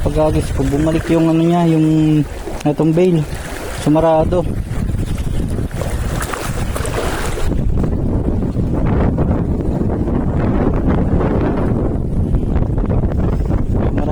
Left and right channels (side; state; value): both; identical; correlation 1.00